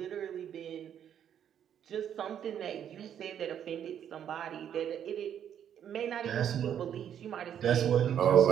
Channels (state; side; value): quieter; left; 9.4 dB